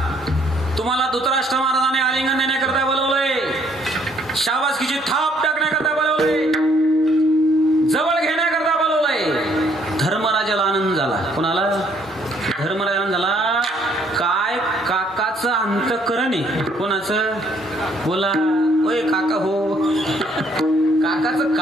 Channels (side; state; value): both; normal; correlation 0.66